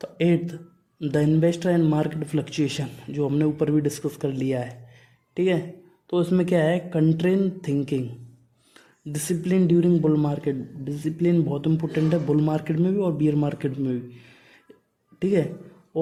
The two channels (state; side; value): identical; both; correlation 1.00